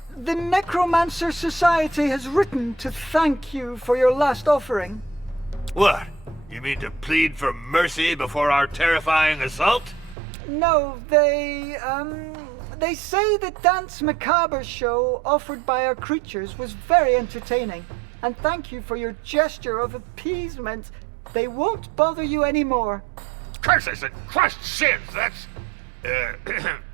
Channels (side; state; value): left; drops out; at 10.2 s